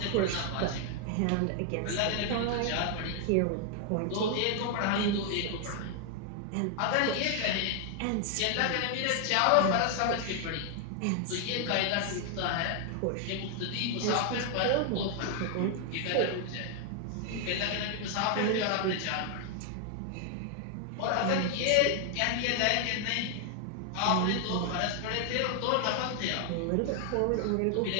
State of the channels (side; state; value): both; different; correlation 0.00